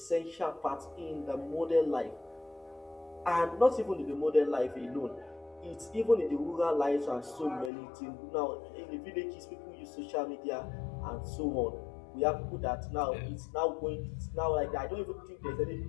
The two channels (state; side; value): drops out; right; at 7.7 s